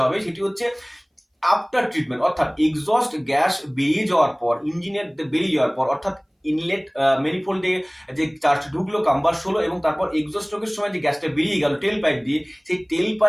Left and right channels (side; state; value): both; identical; correlation 1.00